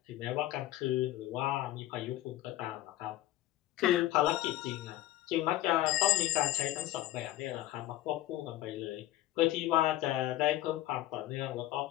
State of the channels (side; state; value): right; quieter; 15.1 dB